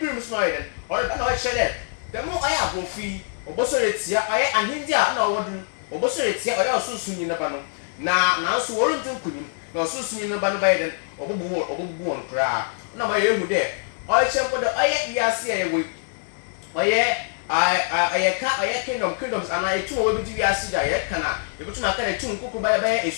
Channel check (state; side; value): silent; right; 63 dB below the other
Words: so na ɔyɛ dɛ ɔreba na ɔkyerɛ dɛ dɛm ɔyɛ abɔfi ɔbɔsɔre etia ɔyɛ ahindi a na ɔwɔ do ɔbɔsɔre etia ɔyɛ ɔsoso nyi neba no na nanso wɔrenti nkunim na ɔsoso nyi neba no bɛyɛ dɛ ɔbɔbubu wɔn koraa ɔna ɔyɛ ehu dɛ ɔyɛ mpo dɛ ɔyɛ wiase a yɛwɔ ɔyɛ kingdoms ana etum a wɔbɛdi wiase da yɛka na yɛbɛtum aka na etum nkoko bɛyɛ